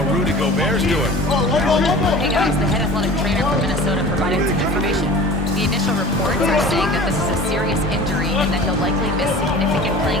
Rudy Gobert's doing. Hey guys, the head athletic trainer from Minnesota provided some information. The initial reports are saying that this is a serious injury and that he'll likely miss significant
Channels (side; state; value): both; normal; correlation 0.40